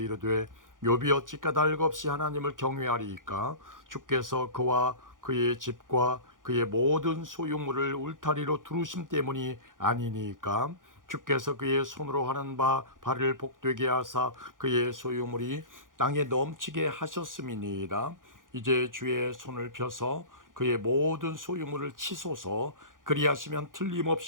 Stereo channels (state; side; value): late; left; 0.89 ms